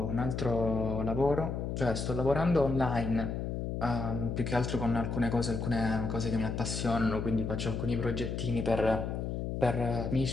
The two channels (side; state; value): left; noise; hum, 3 dB below the sound